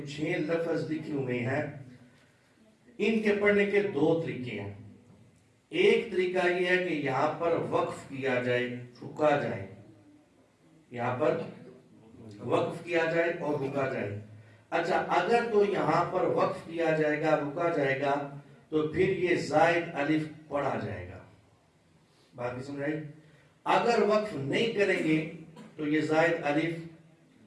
6 لفظ لکھے ہوئے ہیں، ان کے پڑھنے کے دو طریقے ہیں۔ ایک طریقہ یہ ہے کہ یہاں پر وقف کیا جائے، رکا جائے، یہاں پر وقف کیا جائے اور رکا جائے۔ اچھا اگر تو یہاں پر وقف کیا جائے گا، رکا جائے گا، تو پھر یہ زائد الف پڑھا جائے گا۔ باقی سمجھائی؟ اگر وقف نہیں کریں گے تو یہ زائد الف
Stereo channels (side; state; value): both; identical; correlation 1.00